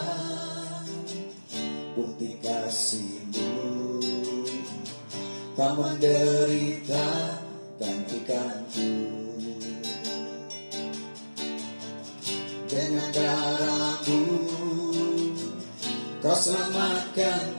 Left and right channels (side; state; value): both; inverted; correlation -1.00